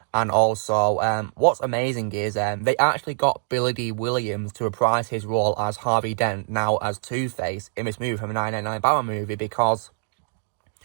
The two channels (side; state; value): left; silent; 63 dB below the other